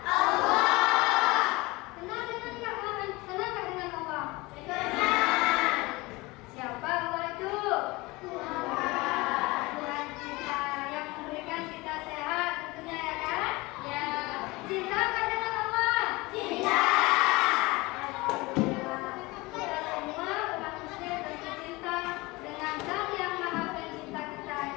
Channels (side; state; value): right; quieter; 22.7 dB